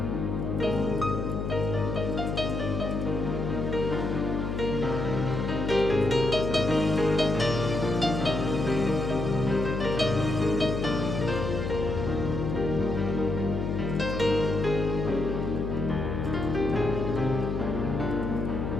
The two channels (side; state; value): left; noise; hum, 2 dB below the sound